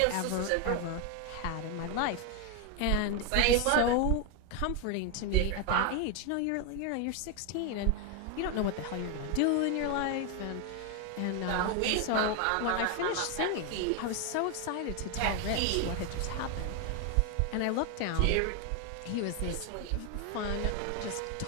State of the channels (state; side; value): different; both; correlation 0.01